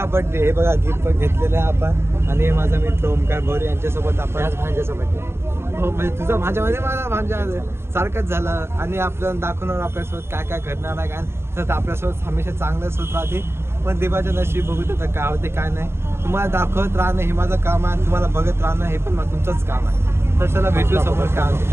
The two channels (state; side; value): late; left; 0.12 ms